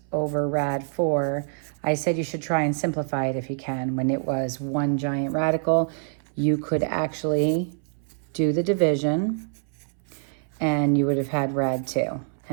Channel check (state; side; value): silent; left; 61 dB below the other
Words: over rad 4, I said you should try and simplify it if you can. When it was one giant radical, you could actually do the division and you would have had rad 2.